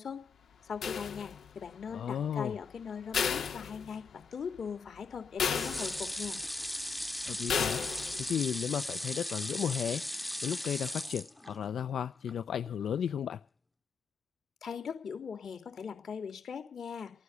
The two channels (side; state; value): right; quieter; 5.6 dB